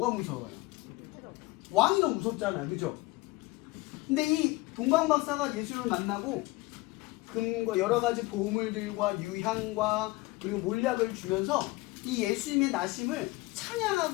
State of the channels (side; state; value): right; quieter; 21.2 dB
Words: 무서워요? 왕이 더 무섭잖아요. 그죠? 근데 이 동방박사가 예수를 만나고 금과 여러 가지 보물들과 유향과 그리고 몰약을 주면서 이 예수님의 나심을